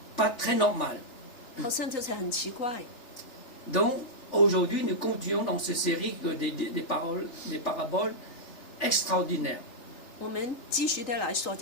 pas très normal. 好像就是很奇怪。 Donc, aujourd'hui, nous continuons dans cette série des paraboles extraordinaires. 我们继续的来说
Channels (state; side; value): late; right; 3.4 ms